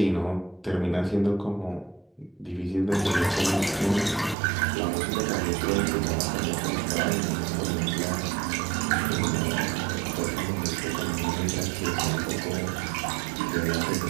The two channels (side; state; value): left; drops out; at 4.4 s